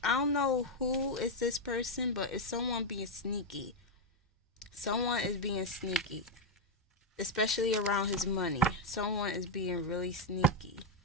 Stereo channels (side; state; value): both; normal; correlation 0.02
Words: I don't know who is this person, but it's someone being sneaky. Someone is being sneaky, especially around his money. Someone is being really sneaky.